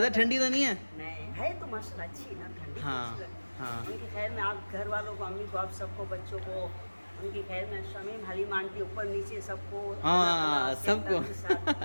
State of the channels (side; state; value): both; inverted; correlation -1.00